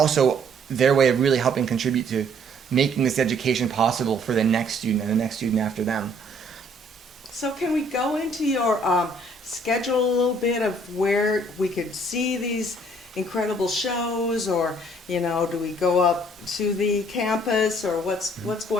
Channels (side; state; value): both; normal; correlation 0.61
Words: their way of really helping contribute to making this education possible for the next student and the next student after them. So can we go into your schedule a little bit of where we could see these incredible shows, or do we go up to the campus, or what's